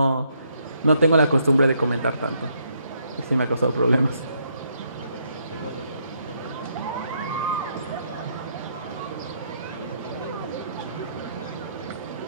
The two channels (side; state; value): both; inverted; correlation -0.73